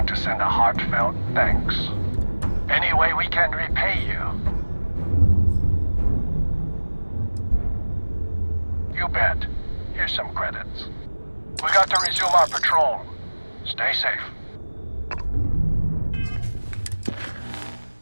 to send a heartfelt thanks. Any way we can repay you? You bet. Here's some credits. We got to resume our patrol. Stay safe.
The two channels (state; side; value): inverted; both; correlation -1.00